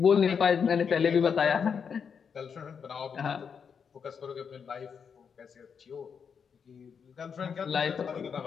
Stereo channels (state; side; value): quieter; right; 6.6 dB